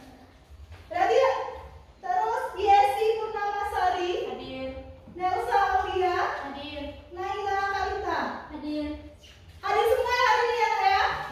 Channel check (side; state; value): both; identical; correlation 1.00